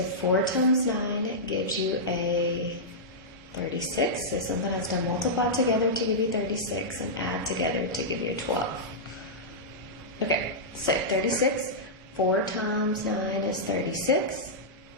4 times 9 gives you a 36. So something has to multiply together to give you 36 and add together to give you a 12. Okay, so 36, 4 times 9 is 36.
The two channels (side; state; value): both; normal; correlation -0.11